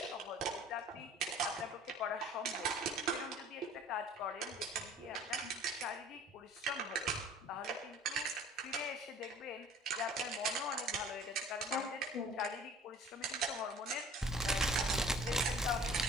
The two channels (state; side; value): normal; both; correlation 0.48